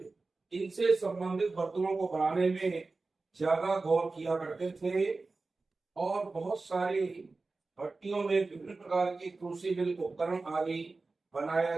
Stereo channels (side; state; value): left; quieter; 3.7 dB